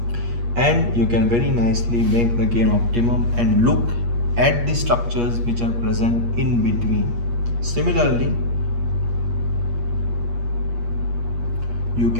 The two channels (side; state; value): left; late; 8.4 ms